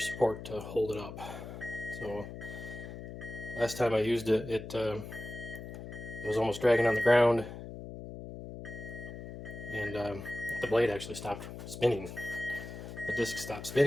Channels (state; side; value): noise; left; hum, 10 dB below the sound